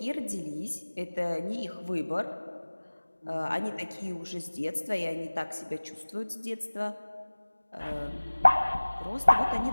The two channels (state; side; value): inverted; both; correlation -1.00